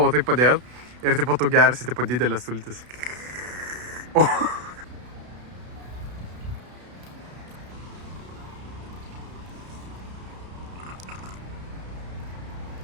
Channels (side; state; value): left; late; 32 ms